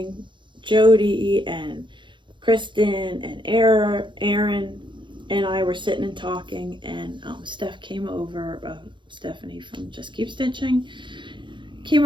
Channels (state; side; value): late; left; 0.23 ms